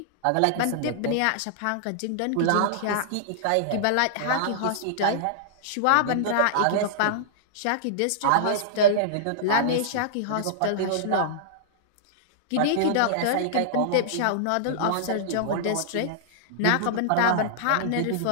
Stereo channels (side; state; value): both; different; correlation -0.02